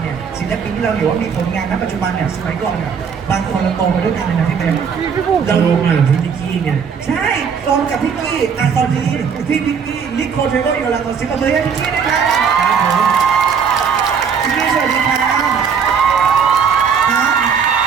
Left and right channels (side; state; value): left; quieter; 6.6 dB